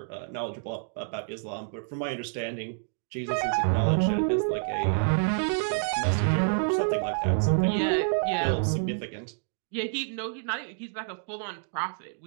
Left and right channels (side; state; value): left; silent; digital silence